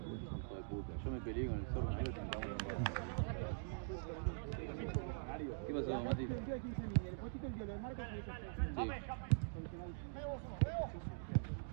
de puta, yo me peleé con el zorro. ¿Qué pasó, Mati?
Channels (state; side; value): silent; left; digital silence